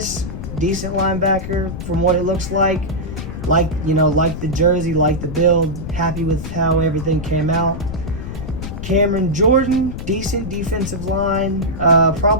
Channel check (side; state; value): left; noise; rumble, 7 dB below the sound